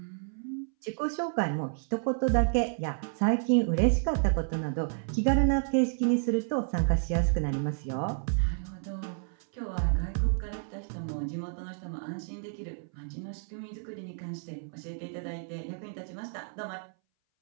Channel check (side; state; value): left; silent; 57 dB below the other